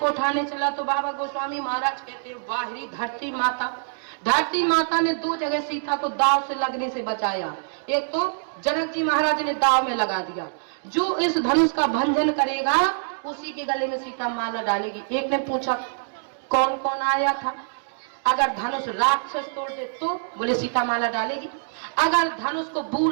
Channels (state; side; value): silent; left; digital silence